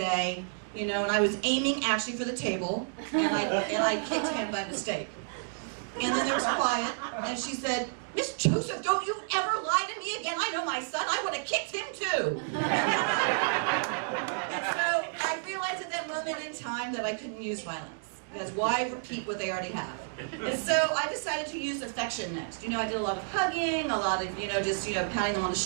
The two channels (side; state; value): left; silent; digital silence